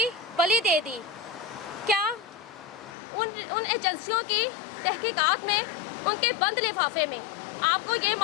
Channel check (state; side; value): drops out; right; at 3.0 s